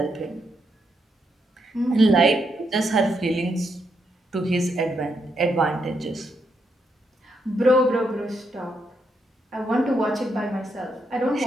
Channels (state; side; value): normal; both; correlation 0.79